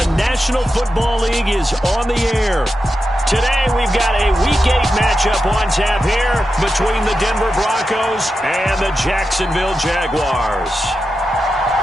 National Football League is on the air. Today we've got a Week 8 matchup on tap here between the Denver Broncos and the Jacksonville Jaguars.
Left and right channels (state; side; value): normal; both; correlation 0.90